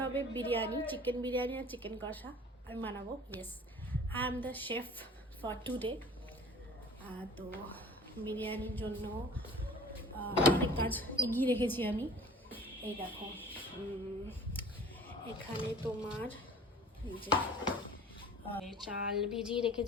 হবে বিরিয়ানি, চিকেন বিরিয়ানি আর চিকেন কষা আমি বানাবো। Yes, I am the chef for today. তো বিরিয়ানির জন্য অনেক কাজ এগিয়ে রেখেছি আমি। এই দেখো, এখানে তোমার যে চাল ভিজিয়ে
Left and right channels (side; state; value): both; normal; correlation 0.45